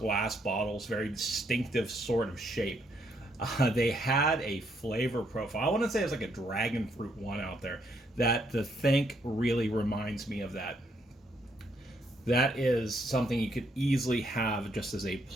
bottles, very distinctive sort of shape. They had a flavor profile. I want to say it was like a dragon fruit one out there that the Think really reminds me of that. That is something you could easily have just as a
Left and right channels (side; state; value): both; normal; correlation 0.73